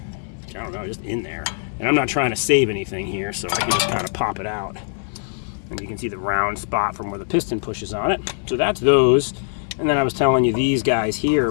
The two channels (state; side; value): silent; right; 64 dB below the other